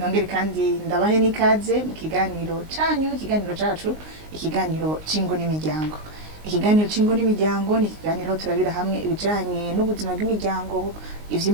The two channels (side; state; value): left; late; 19 ms